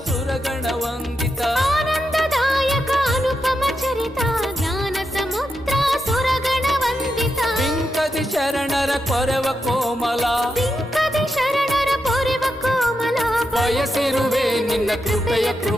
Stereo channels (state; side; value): normal; both; correlation 0.85